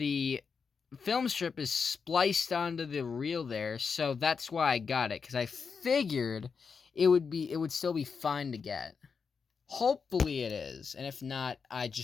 film strip is spliced onto the reel there, so that's why I got it, because I figured it would still be fine to get. Hopefully it is, and if not, I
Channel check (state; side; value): quieter; right; 5.6 dB